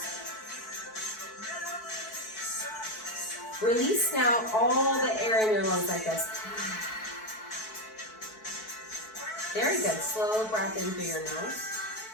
Release now all the air in your lungs like this. Very good. Slow breath in through your nose.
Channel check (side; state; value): right; late; 4.6 ms